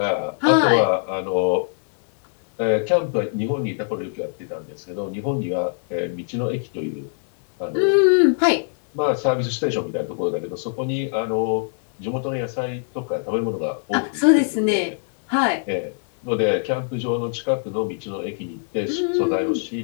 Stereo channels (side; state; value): right; silent; digital silence